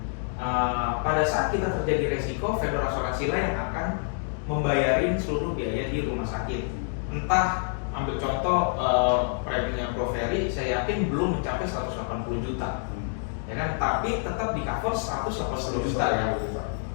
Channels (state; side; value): silent; right; 58 dB below the other